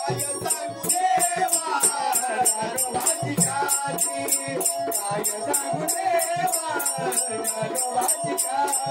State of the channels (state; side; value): identical; both; correlation 1.00